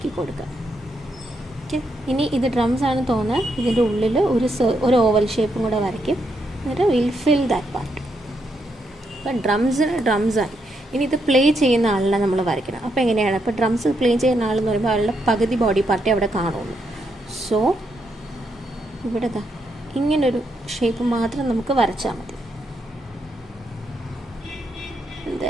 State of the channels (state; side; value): normal; both; correlation 0.79